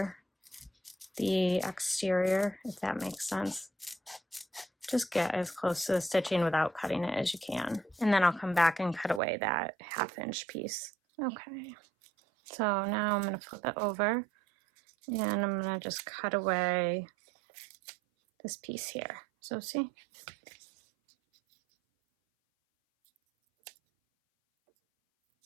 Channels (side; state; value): left; drops out; at 9.2 s